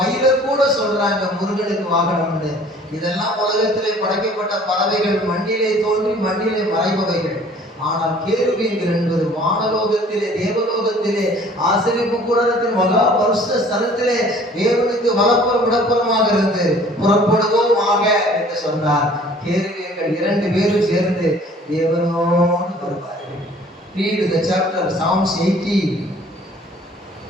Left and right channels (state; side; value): normal; both; correlation 0.52